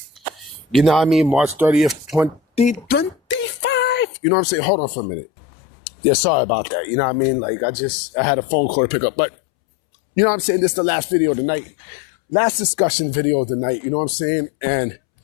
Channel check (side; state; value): right; drops out; at 4.0 s